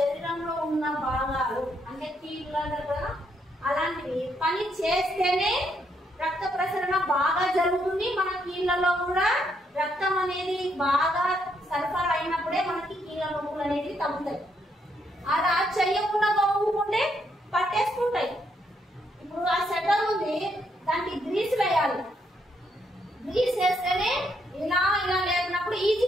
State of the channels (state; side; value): normal; both; correlation 0.75